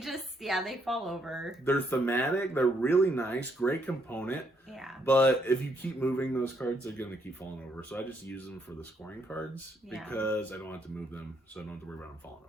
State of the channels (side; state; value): both; normal; correlation 0.73